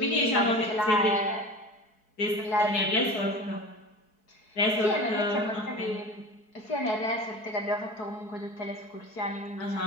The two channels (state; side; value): late; right; 4.7 ms